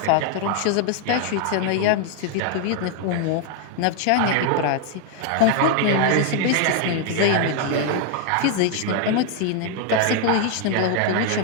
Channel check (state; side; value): different; both; correlation 0.00